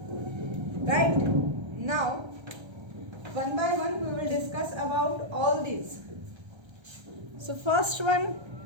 Right? Now, one by one we will discuss about all these. So first one,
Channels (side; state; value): left; late; 1.3 ms